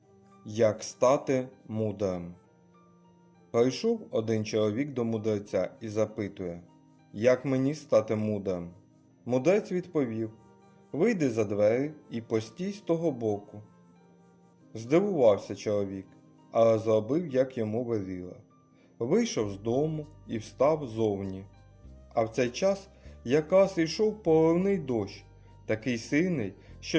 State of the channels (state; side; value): identical; both; correlation 1.00